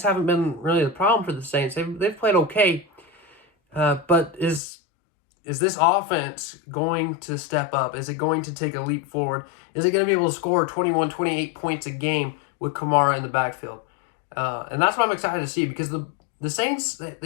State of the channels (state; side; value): drops out; right; at 4.6 s